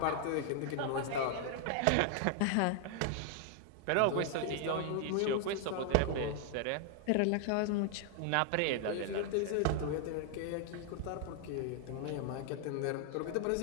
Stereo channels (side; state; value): both; different; correlation 0.00